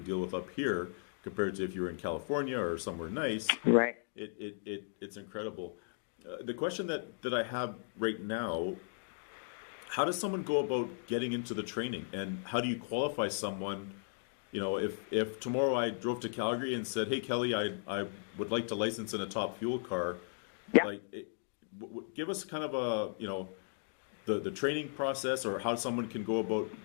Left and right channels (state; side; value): silent; right; digital silence